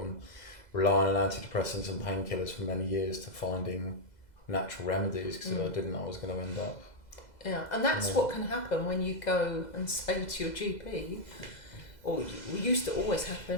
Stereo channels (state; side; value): late; right; 2.0 ms